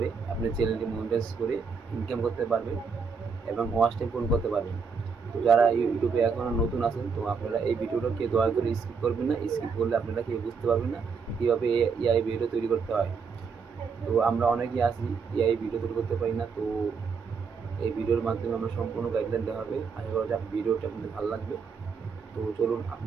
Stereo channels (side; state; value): left; quieter; 5.5 dB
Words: আপনার চ্যানেলটি মনিটাইজ করে ইনকাম করতে পারবেন এবং ওয়াচ টাইম পূরণ করতে পারবেন। তো যারা ইউটিউবে এখনও নতুন আছেন, তো আপনারা এই ভিডিওটাকে দয়া করে স্কিপ করবেন না। স্কিপ করলে আপনারা কেউ বুঝতে পারবেন না কীভাবে এআই ভিডিও তৈরি করতে হয়। তো আমরা অনেকেই আছি এআই ভিডিও তৈরি করতে পারি না। তো এই ভিডিওর মাধ্যমে আমরা সম্পূর্ণ গাইডলাইন দেওয়া হবে। আশা করা যায় ভিডিওটা আপনাদের ভালো লাগবে। তো চলুন